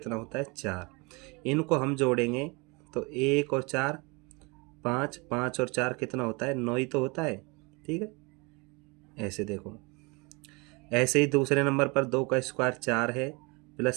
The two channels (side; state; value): left; quieter; 28.2 dB